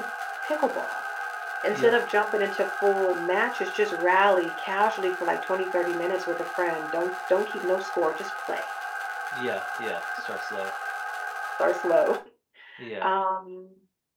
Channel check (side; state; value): both; identical; correlation 1.00